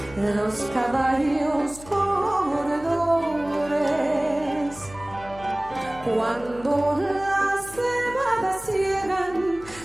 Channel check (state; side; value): noise; left; hum, 19 dB below the sound